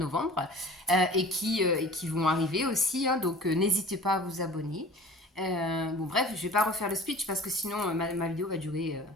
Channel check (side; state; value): both; normal; correlation 0.43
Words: et qui vont arriver aussi. Hein, donc n'hésitez pas à vous abonner. Bon bref, je vais pas refaire le speech parce que sinon ma vidéo va durer